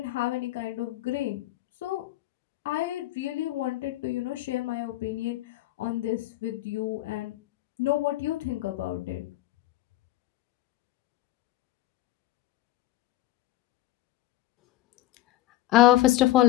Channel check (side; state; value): right; quieter; 15.1 dB